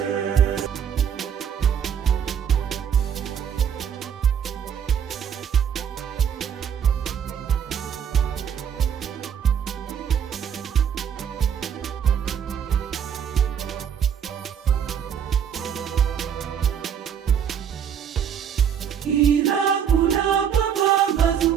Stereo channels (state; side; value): quieter; left; 8.2 dB